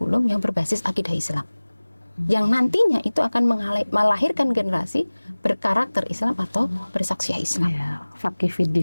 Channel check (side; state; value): both; inverted; correlation -1.00